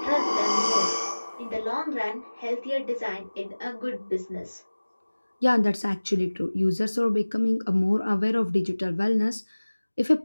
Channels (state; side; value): inverted; both; correlation -1.00